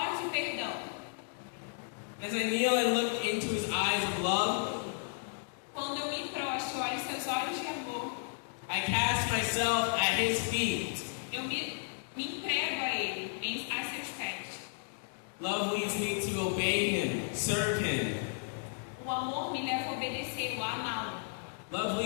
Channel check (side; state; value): right; silent; digital silence